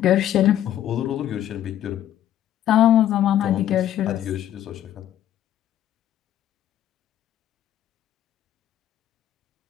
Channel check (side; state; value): right; quieter; 11.7 dB